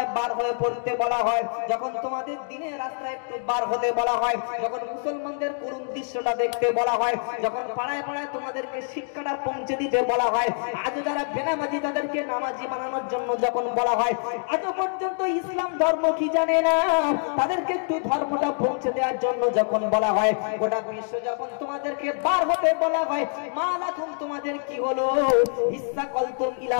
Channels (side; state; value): right; silent; 61 dB below the other